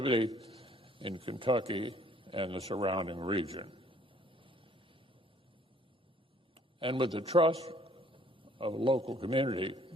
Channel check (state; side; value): normal; both; correlation 0.60